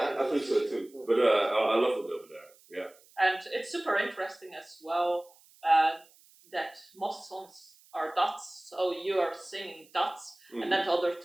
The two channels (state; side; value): noise; right; hiss, 28 dB below the sound